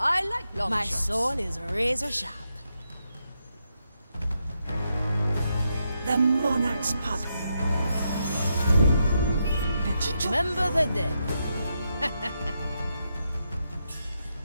like long My shots. soul is razor sharp. The monarch's puppet. Remember the dead.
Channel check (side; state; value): both; inverted; correlation -0.83